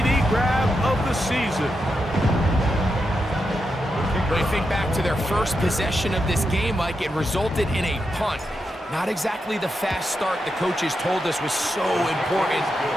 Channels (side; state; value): both; normal; correlation 0.86